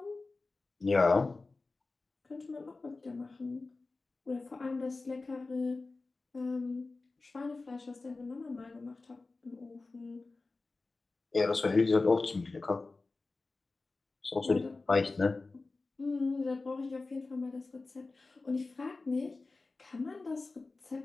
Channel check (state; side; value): quieter; right; 3.6 dB